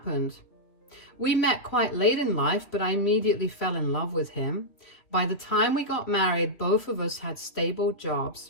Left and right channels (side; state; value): right; late; 3.2 ms